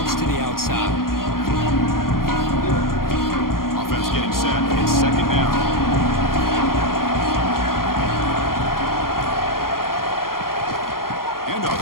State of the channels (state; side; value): late; right; 0.92 ms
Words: to the outside. Offense getting set. It's second down.